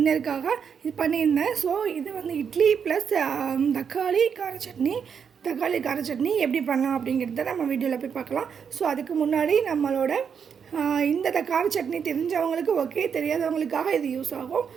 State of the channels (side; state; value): left; quieter; 7.0 dB